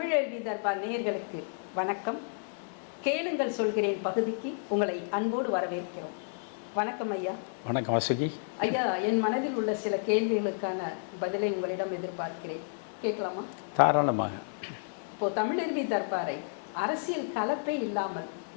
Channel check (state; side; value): silent; right; digital silence